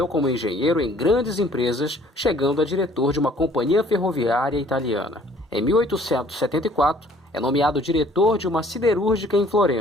como engenheiro em grandes empresas, chegando a diretor de uma companhia ferroviária italiana. Em 1874, é nomeado diretor de uma siderúrgica em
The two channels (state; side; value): normal; both; correlation 0.57